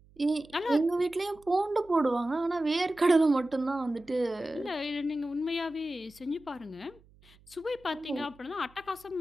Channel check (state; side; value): noise; right; hum, 28 dB below the sound